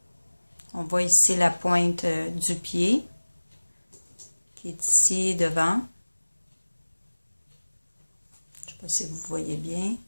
On voit ici la pointe du pied qui est ici devant. Je ne sais pas si vous voyez bien,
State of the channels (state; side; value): inverted; both; correlation -1.00